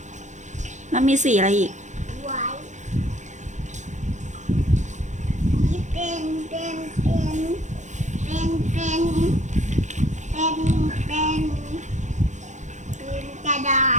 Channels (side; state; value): left; late; 0.35 ms